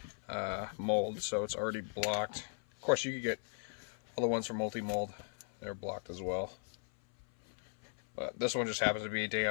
mold, so it's already blocked. Of course, you could get all the ones from multi-mold. They're blocked as well. But this one just happens to be a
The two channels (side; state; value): right; silent; 53 dB below the other